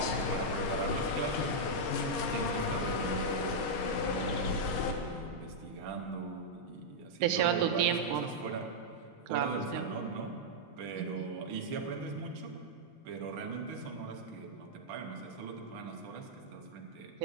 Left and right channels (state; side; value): normal; both; correlation -0.06